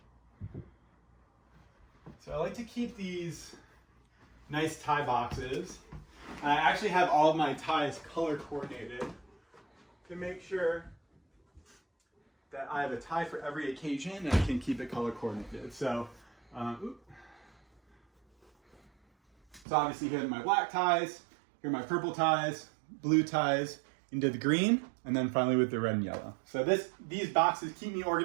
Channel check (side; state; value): left; drops out; at 19.7 s